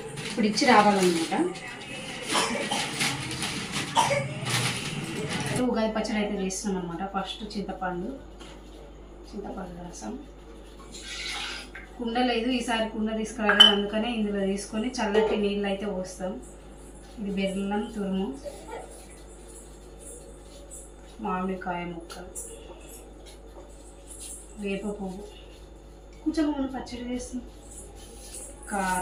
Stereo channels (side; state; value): both; identical; correlation 1.00